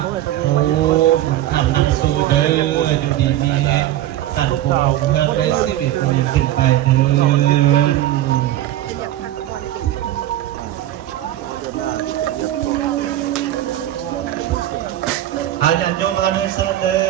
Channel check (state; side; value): quieter; left; 13.6 dB